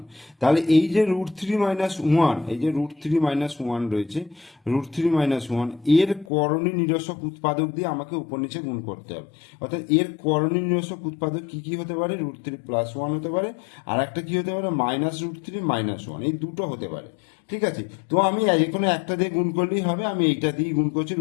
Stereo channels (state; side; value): drops out; right; at 6.2 s